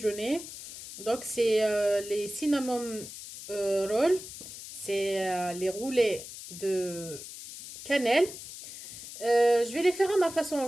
Donc c'est les cinnamon rolls, c'est les roulés de cannelle. Je vais les faire à ma façon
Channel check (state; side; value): noise; left; hiss, 12 dB below the sound